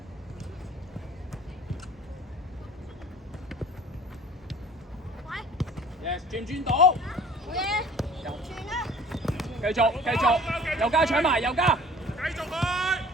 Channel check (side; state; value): both; normal; correlation 0.49